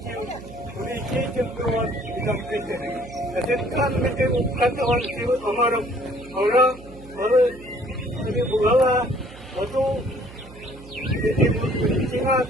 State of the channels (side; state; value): right; noise; hum, 18 dB below the sound